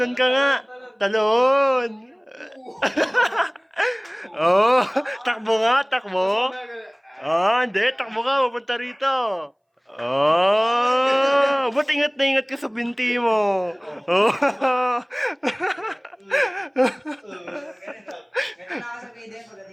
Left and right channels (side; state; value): both; identical; correlation 1.00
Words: ka nga. Talon. Oh, takbo nga, takbo. Ah, hindi, takbo ka, pupunta rito. Oh, ba't ingat na ingat ka sa binti mo? Oh. Ganito na ako sa video